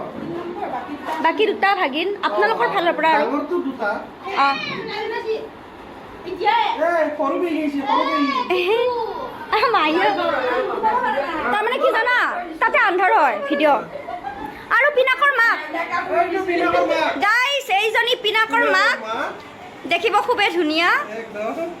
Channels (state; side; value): identical; both; correlation 1.00